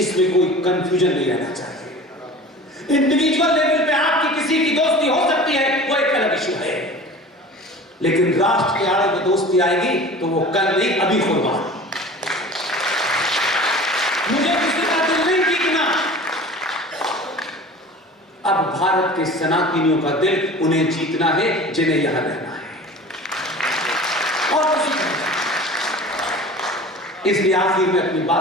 कोई कंफ्यूजन नहीं रहना चाहिए। इंडिविजुअल लेवल पे आपकी किसी की दोस्ती हो सकती है, वो एक अलग इशू है, लेकिन राष्ट्र के आड़े में दोस्ती आएगी तो वो कल नहीं अभी होगा। मुझे किसी का दिल नहीं जीतना। अब भारत के सनातनियों का दिल उन्हें जीतना है जिन्हें यहां रहना है, और किसी का। इसलिए आखिर में अपनी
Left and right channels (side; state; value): both; normal; correlation 0.40